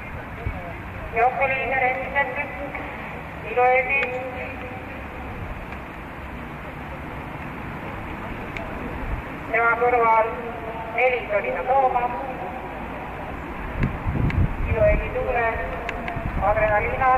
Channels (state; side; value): identical; both; correlation 1.00